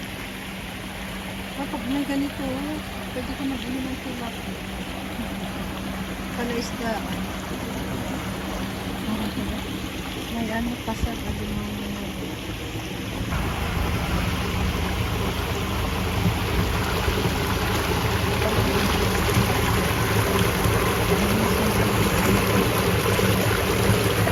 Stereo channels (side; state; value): both; identical; correlation 1.00